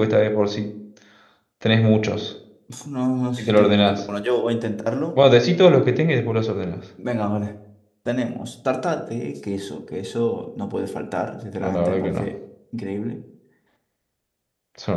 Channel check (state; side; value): identical; both; correlation 1.00